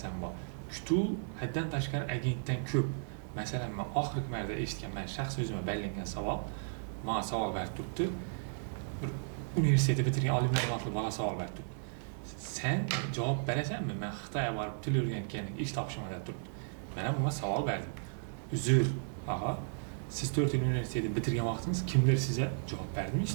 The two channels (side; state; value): left; silent; digital silence